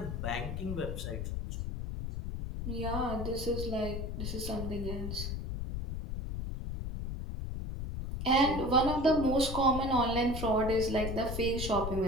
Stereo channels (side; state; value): left; noise; rumble, 4 dB below the sound